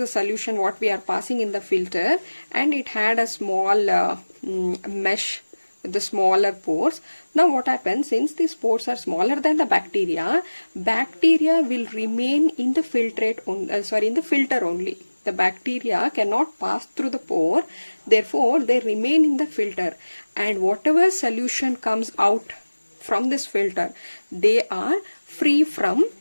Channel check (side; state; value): both; inverted; correlation -1.00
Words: solution what we are passing in the filter, and it had a small mesh with the smaller pores. Now what happens, since these pores are smaller than the bacteria will remain in the filtrate in the filter only. The bacteria cannot pass through the pore, therefore they remain in the filter, and whatever solution comes out from this filter, they are free from